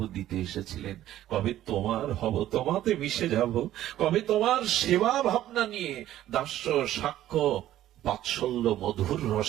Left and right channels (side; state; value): left; quieter; 13.2 dB